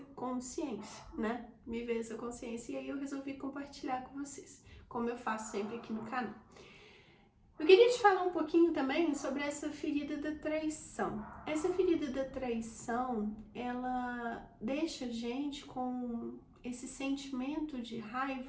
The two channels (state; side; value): identical; both; correlation 1.00